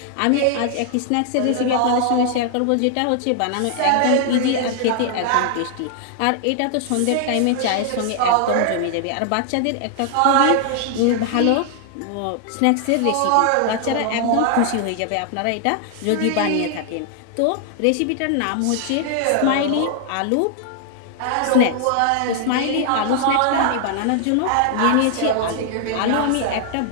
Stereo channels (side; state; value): both; different; correlation 0.00